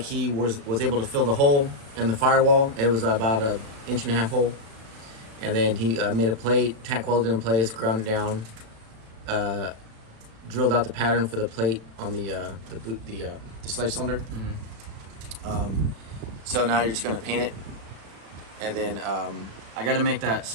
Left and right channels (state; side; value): late; left; 36 ms